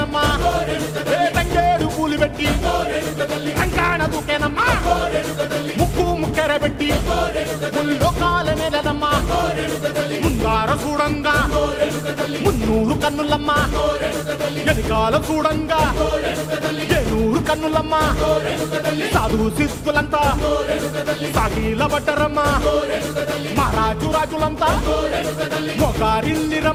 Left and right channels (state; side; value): identical; both; correlation 1.00